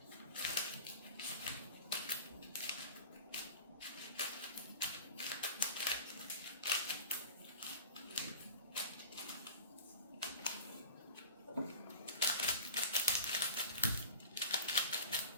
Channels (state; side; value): inverted; both; correlation -0.37